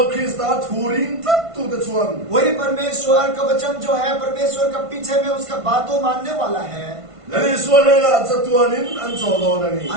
ख्रिस्ता थूरिन तक तू ते चुआन वही परमेश्वर का वचन जो है, परमेश्वर का पीछे में उसका बातों मानने वाला है। ले सो ले ला चतुआनिन अन चोलो ननी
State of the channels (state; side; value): late; left; 1.5 ms